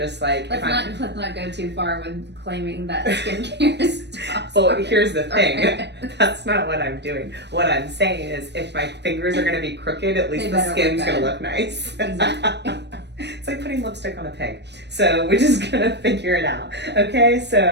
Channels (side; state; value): left; late; 0.50 ms